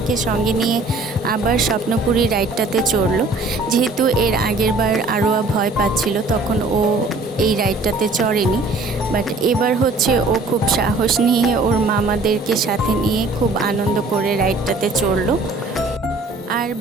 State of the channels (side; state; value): left; quieter; 3.3 dB